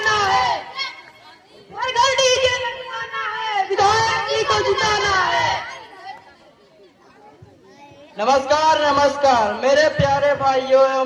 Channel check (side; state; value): both; identical; correlation 1.00